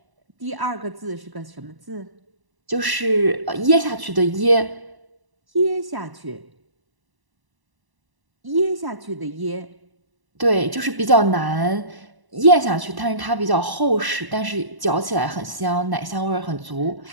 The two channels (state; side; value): late; left; 1.0 ms